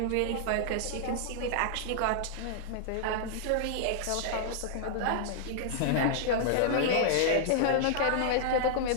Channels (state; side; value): different; both; correlation -0.01